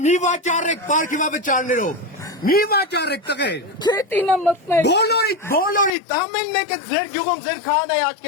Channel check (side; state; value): right; drops out; at 5.9 s